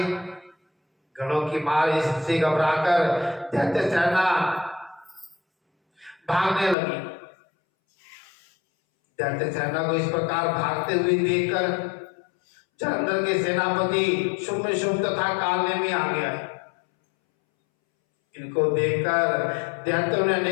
गणों की मार इससे घबराकर दैत्य सेना भागने लगी। दैत्य सेना को इस प्रकार भागते हुए देखकर जलंधर के सेनापति शुम्भ तथा कालनेमी आ गया। इनको देखकर दैत्यों ने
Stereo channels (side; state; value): right; drops out; at 6.8 s